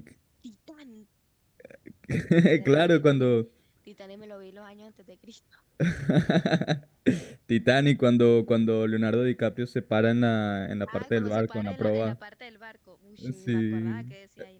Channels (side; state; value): both; identical; correlation 1.00